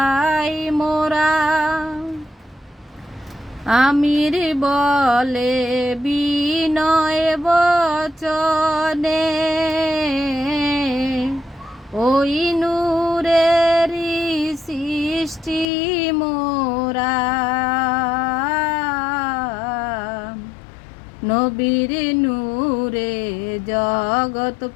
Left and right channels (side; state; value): right; drops out; at 15.7 s